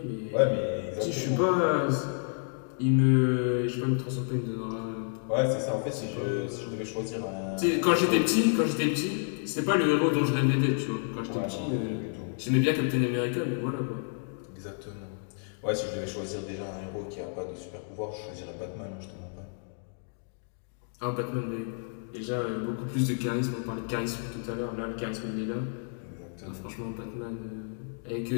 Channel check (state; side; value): silent; right; 58 dB below the other